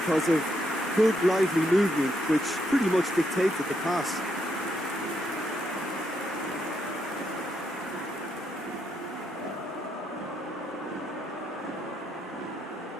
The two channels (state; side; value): normal; both; correlation 0.78